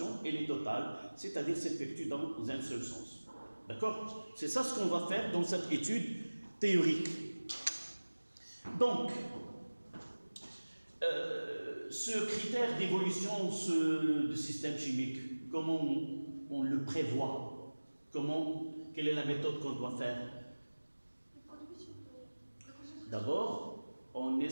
elle est totale, c'est-à-dire s'effectue dans un seul sens. D'accord? C'est ça ce qu'on va faire dans cette étude théorique. Donc, ce critère d'évolution du système chimique, comment on le prévoit? Quelle est la méthode qu'on doit faire? D'abord, on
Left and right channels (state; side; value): inverted; both; correlation -1.00